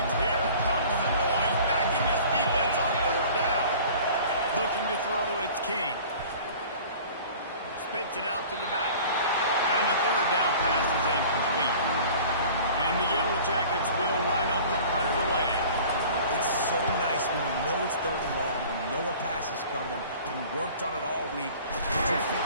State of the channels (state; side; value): inverted; both; correlation -0.45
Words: Here comes the noise, backing this defense on 3rd down. Looking to throw, it's King. Spits it out to the back. And the 3rd down pass is incomplete. And the Yellow Jackets will line up to punt it away. It's so nice when you know it's 3rd and long, you know a pass is coming, and you worked on it all week. Get your